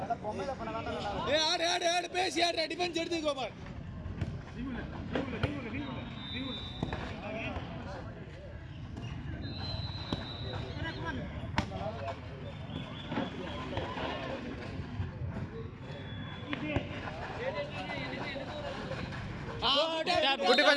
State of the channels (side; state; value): both; identical; correlation 1.00